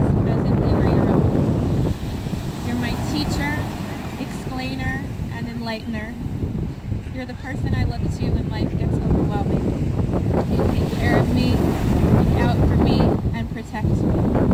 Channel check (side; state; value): both; identical; correlation 1.00